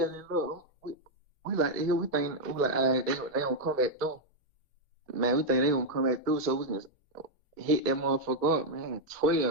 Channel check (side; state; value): both; normal; correlation 0.00